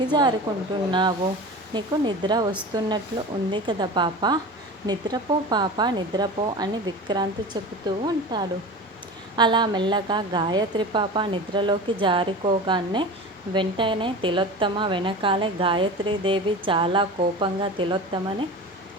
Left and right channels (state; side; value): normal; both; correlation 0.32